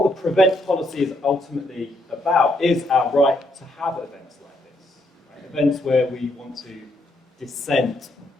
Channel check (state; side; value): normal; both; correlation 0.75